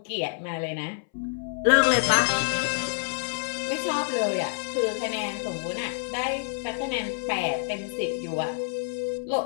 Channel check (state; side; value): silent; right; 60 dB below the other